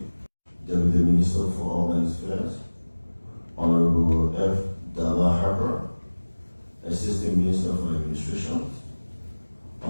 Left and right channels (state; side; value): inverted; both; correlation -1.00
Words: Deputy Minister for Urban Affairs, Honorable F. Dalla Harper, Assistant Minister for Administration,